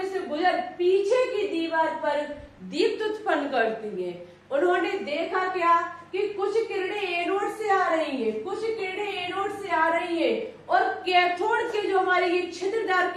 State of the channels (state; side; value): identical; both; correlation 1.00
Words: से गुजर पीछे की दीवार पर दीप्त उत्पन्न करती हैं। उन्होंने देखा क्या कि कुछ किरणें एनोड से आ रही हैं, कुछ किरणें एनोड से आ रही हैं और कैथोड के जो हमारे ये छिद्रदार